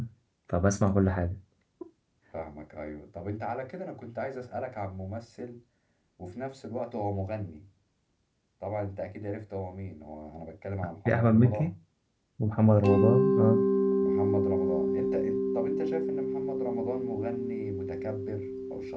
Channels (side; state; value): both; identical; correlation 1.00